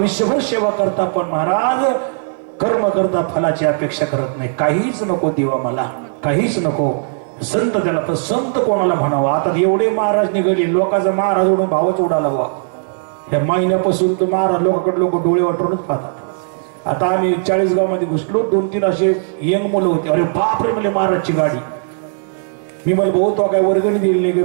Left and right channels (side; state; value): left; silent; 64 dB below the other